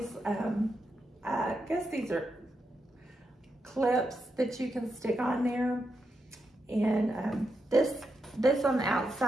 I guess these are clips that you can stick on there. And this on the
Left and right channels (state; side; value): normal; both; correlation 0.85